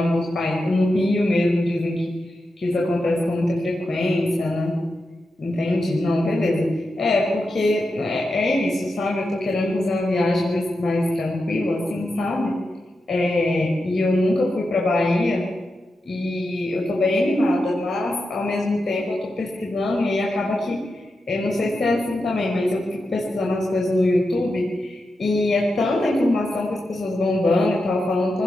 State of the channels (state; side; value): normal; both; correlation 0.89